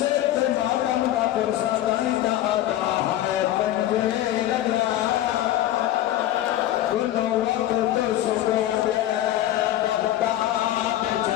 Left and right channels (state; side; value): quieter; right; 13.5 dB